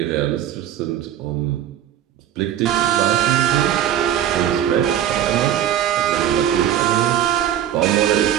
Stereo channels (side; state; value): left; quieter; 10.9 dB